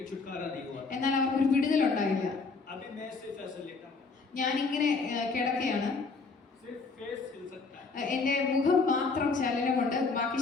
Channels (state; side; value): quieter; right; 4.3 dB